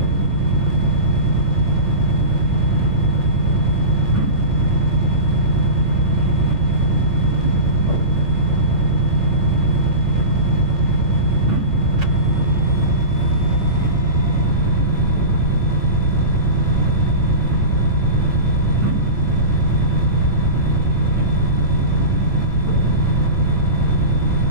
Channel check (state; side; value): late; left; 8.9 ms